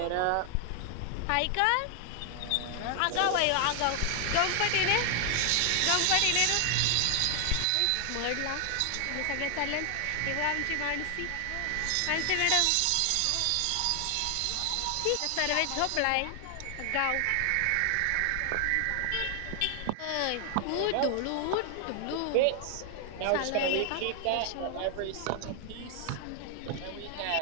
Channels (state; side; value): different; both; correlation 0.00